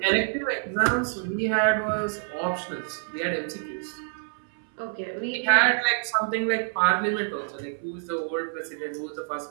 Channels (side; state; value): left; silent; 60 dB below the other